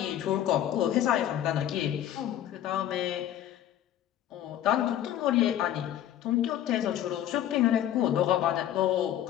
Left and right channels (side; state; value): right; quieter; 11.5 dB